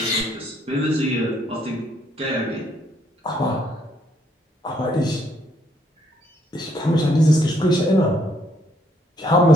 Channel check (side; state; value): both; normal; correlation 0.69